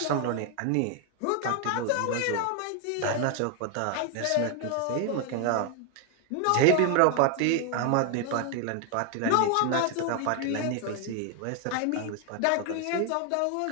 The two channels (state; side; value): different; both; correlation 0.00